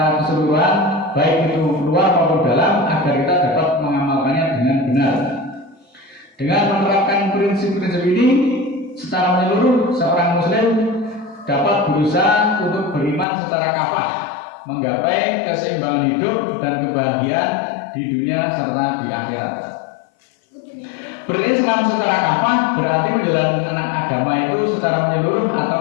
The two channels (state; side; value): drops out; right; at 13.2 s